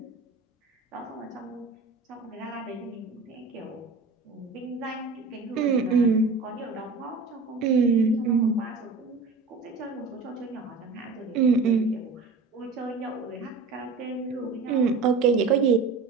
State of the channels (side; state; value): left; quieter; 4.1 dB